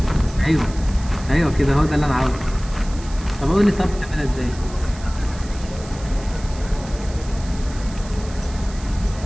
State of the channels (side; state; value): right; noise; hiss, 18 dB below the sound